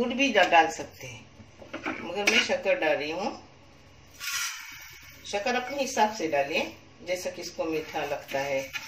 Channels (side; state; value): both; identical; correlation 1.00